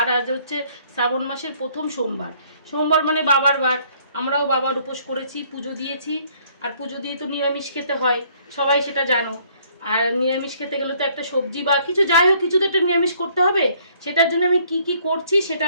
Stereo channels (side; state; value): both; inverted; correlation -0.62